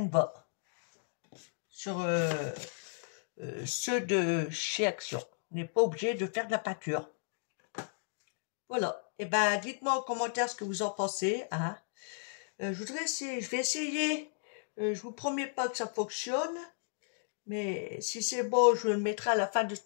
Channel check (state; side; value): silent; right; digital silence